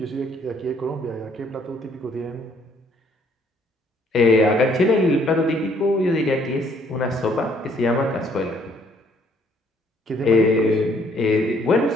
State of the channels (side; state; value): both; normal; correlation 0.65